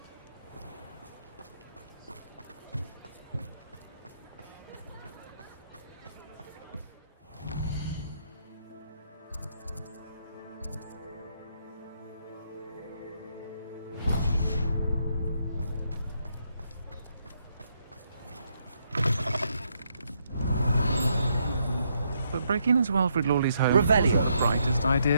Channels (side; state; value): both; inverted; correlation -0.76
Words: But breaking into Alfred Lawley's home Revelio. isn't the brightest